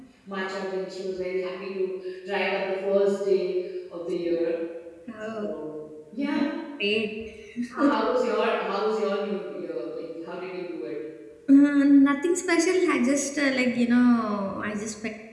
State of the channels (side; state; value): both; identical; correlation 1.00